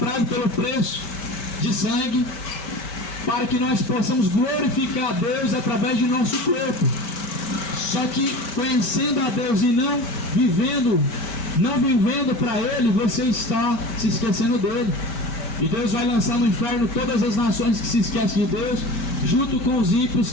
pelo preço de sangue, para que nós possamos glorificar a Deus através de nosso corpo. Só que conhecendo a Deus e não vivendo para Ele, você está se esquecendo dele. E Deus vai lançar no inferno todas as nações que se esquecem de Deus, junto com os ímpios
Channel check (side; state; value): right; late; 5.1 ms